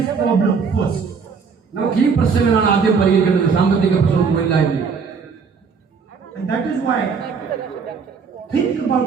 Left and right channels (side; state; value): left; quieter; 5.5 dB